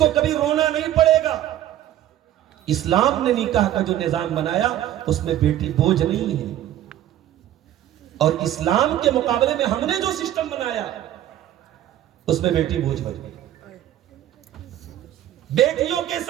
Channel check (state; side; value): quieter; left; 12.4 dB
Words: कभी रोना नहीं पड़ेगा। इस्लाम ने निकाह का जो निजाम बनाया उसमें बेटी बोझ नहीं है। और इस्लाम के मुकाबले में हमने जो सिस्टम बनाया उसमें बेटी बोझ बन गई। बेटियों के